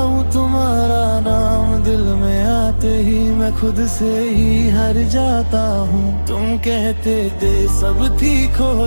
तुम्हारा नाम दिल में आते ही मैं खुद से ही हार जाता हूँ। तुम कहते थे सब ठीक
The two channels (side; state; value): both; inverted; correlation -1.00